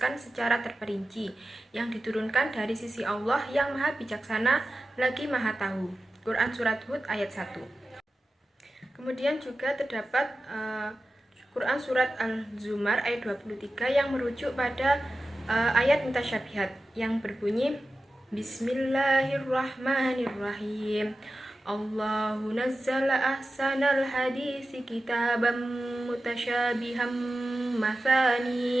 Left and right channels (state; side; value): normal; both; correlation 0.94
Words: secara terperinci, yang diturunkan dari sisi Allah yang maha bijaksana lagi maha tahu. Quran Surat Hud ayat 1. Kemudian juga terdapat Quran Surat Al-Zumar ayat 23 yang merujuk pada ayat mutasyabihat yang berbunyi Bismillahirrahmanirrahim. Allahu nazzala ahsanal hadisi kitaban mutasyabiham